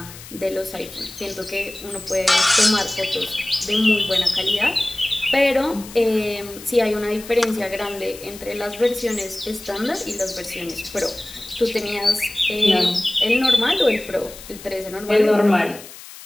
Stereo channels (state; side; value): noise; left; hiss, 16 dB below the sound